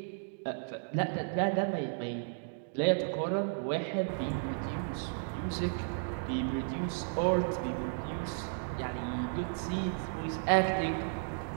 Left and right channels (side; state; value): left; silent; digital silence